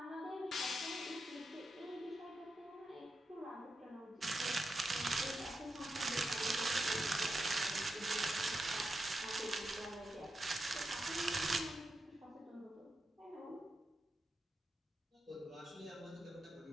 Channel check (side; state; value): both; normal; correlation 0.87